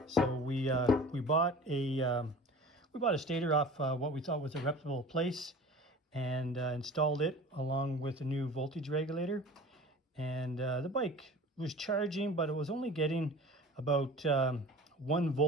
So we bought a stator off what we thought was a reputable place, and installed it along with a new voltage regulator. And the bike was charging, but it was only getting about 1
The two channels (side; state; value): both; normal; correlation 0.40